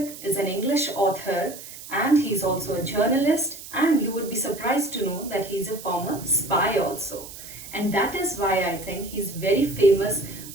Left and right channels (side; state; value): right; noise; hiss, 14 dB below the sound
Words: is an English author and he's also a journalist, and you would be surprised to know that he's a former spy also. And that is why I think he's very famous